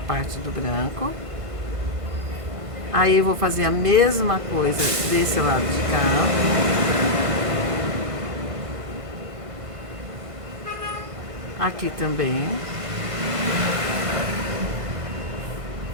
do branco. Aí eu vou fazer a mesma coisa desse lado de cá. Aqui também.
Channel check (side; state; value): left; late; 1.5 ms